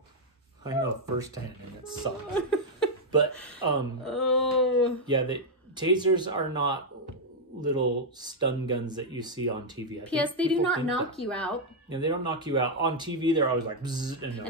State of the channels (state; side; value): normal; both; correlation -0.01